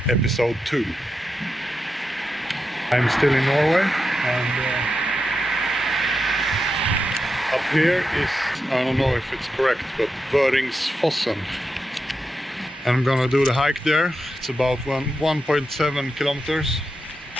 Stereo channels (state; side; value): normal; both; correlation 0.87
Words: episode 2. I'm still in Norway and up here is, I don't know if it's correct, but Vøringsfossen. And I'm gonna do the hike there. It's about 1.7 kilometers,